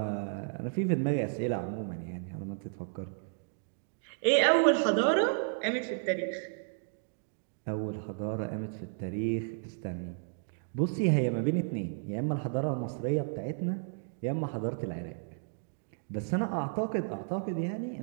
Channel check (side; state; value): left; silent; digital silence